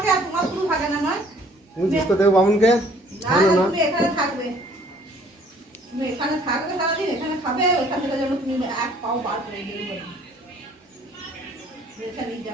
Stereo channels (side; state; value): both; normal; correlation 0.58